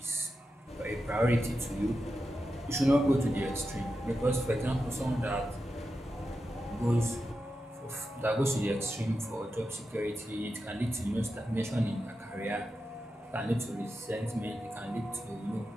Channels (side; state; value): both; normal; correlation 0.89